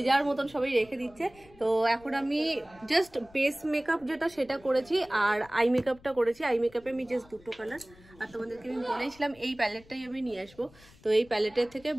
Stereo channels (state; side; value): noise; left; rumble, 25 dB below the sound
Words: যার মতন সবাই রেখে দিচ্ছে। তো এখন আমি জাস্ট বেস মেকআপ যেটা সেটা করেছি আর আই মেকআপটা করেছি। আই মেকআপে আমি জাস্ট দুটো কালার, আর তোমাদেরকে আমি বলেছিলাম এই প্যালেটটাই আমি নিয়ে আসবো। তো এই প্যালেটের থেকে